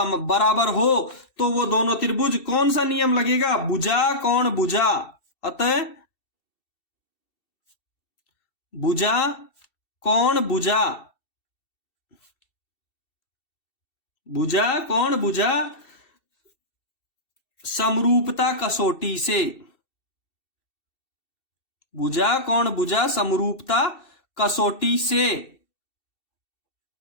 बराबर हो तो वो दोनों त्रिभुज, कौन सा नियम लगेगा? भुजा कोण भुजा। अतः भुजा कोण भुजा, भुजा कोण भुजा समरूपता कसौटी से, भुजा कोण भुजा समरूपता कसौटी से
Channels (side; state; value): right; late; 2.7 ms